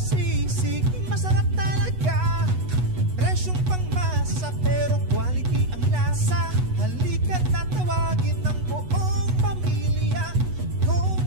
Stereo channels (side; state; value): left; late; 8.1 ms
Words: masarap talaga. Presyong pangmasa pero quality ang lasa. Halika't natawagin ng buong pamilya. Home